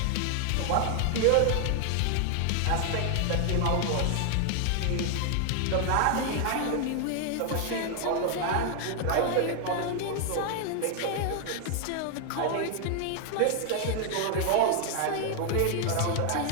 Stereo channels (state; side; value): different; both; correlation 0.00